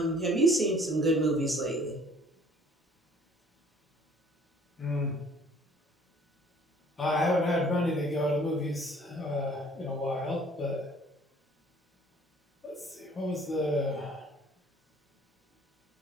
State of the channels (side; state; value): both; normal; correlation 0.55